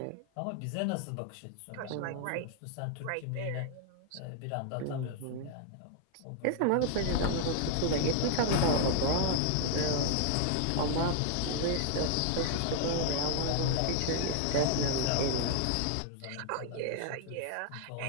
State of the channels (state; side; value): different; both; correlation 0.00